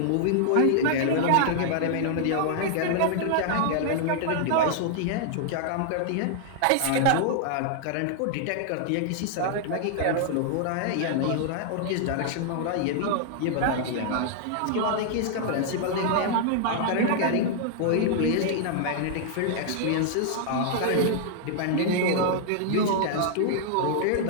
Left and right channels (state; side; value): different; both; correlation -0.01